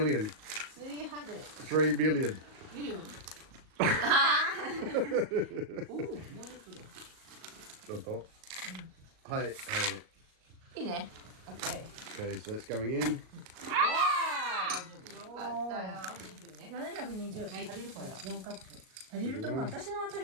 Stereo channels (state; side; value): late; left; 38 ms